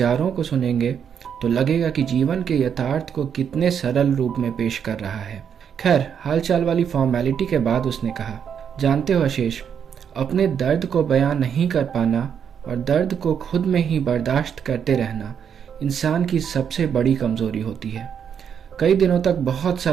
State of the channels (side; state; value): left; quieter; 7.8 dB